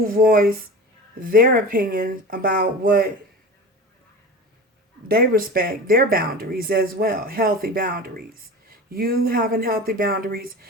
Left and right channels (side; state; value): both; normal; correlation 0.32